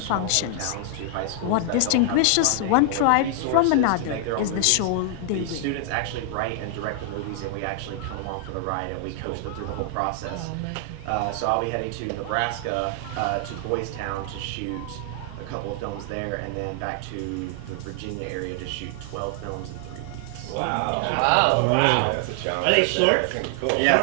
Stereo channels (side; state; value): both; different; correlation 0.00